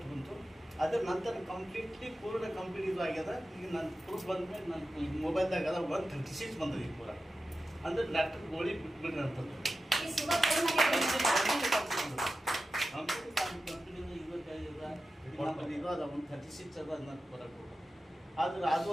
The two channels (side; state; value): both; normal; correlation 0.93